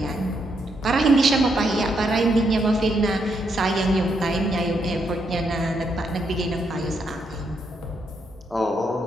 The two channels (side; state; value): both; normal; correlation 0.78